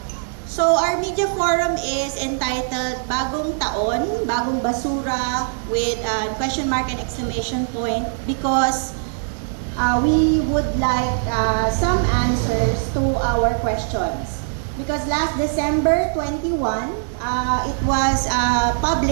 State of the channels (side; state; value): left; silent; digital silence